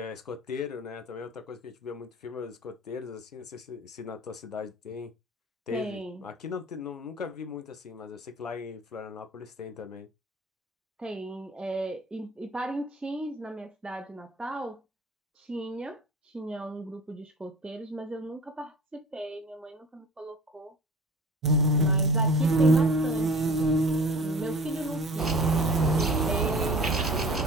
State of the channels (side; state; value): both; normal; correlation 0.42